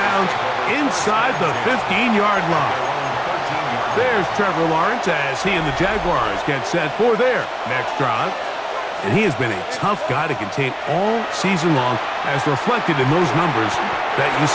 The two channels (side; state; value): both; identical; correlation 1.00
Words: inside the 15-yard line. There's Trevor Lawrence as he and the Jaguars get set for their next drive. And he has been a tough guy to contain all season long, as reflected in those numbers that you